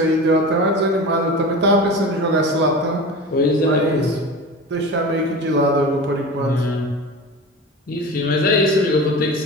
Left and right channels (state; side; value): normal; both; correlation 0.31